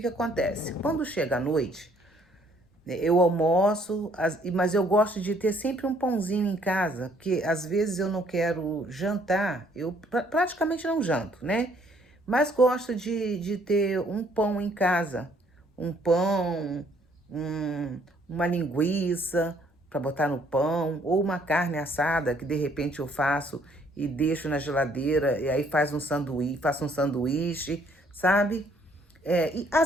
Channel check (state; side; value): normal; both; correlation 0.64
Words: acontece? Quando chega a noite, né, eu almoço, mas eu gosto de ter sempre um pãozinho em casa, porque às vezes eu não quero jantar, eu praticamente não janto, né? Mas gosto de ter um pão em casa, um pão, uma linguiça para botar no pão, ou uma carne assada que de repente eu faço e deixo na geladeira, e aí faço um sanduíche, sabe? E